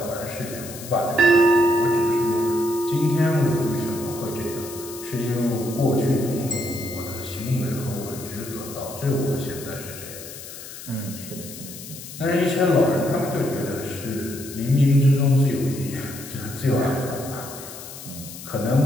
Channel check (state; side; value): noise; left; hiss, 13 dB below the sound